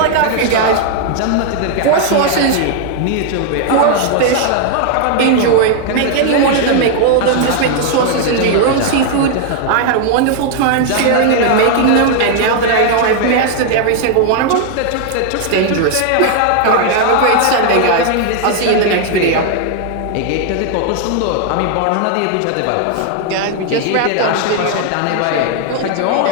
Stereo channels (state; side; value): different; both; correlation 0.00